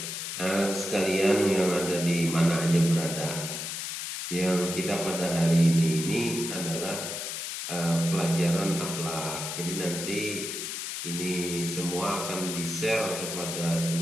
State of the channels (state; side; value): noise; left; hiss, 5 dB below the sound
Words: Sekalian yang ada di mana aja berada, yang kita pada hari ini adalah pelajaran akhlak. Jadi nanti ini semua akan di-share kepada